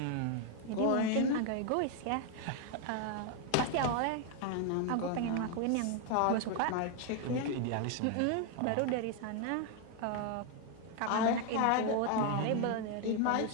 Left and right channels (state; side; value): different; both; correlation 0.01